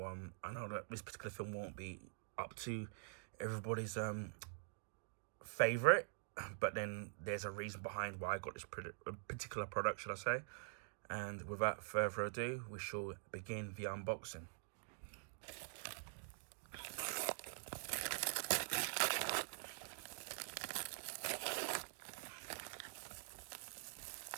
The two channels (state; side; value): silent; left; digital silence